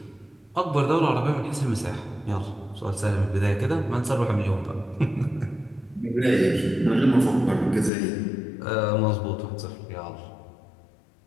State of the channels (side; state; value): right; drops out; at 7.9 s